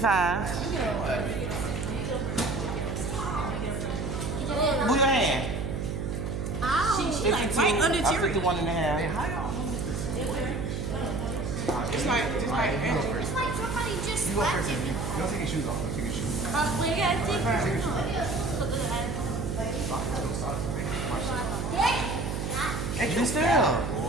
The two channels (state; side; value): noise; right; hum, 3 dB below the sound